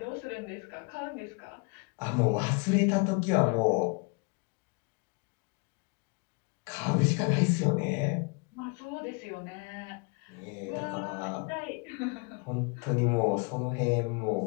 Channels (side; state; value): right; quieter; 33.2 dB